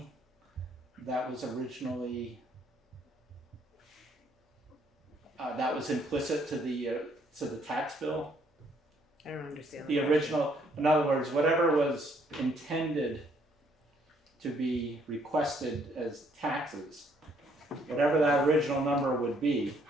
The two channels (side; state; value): both; normal; correlation 0.67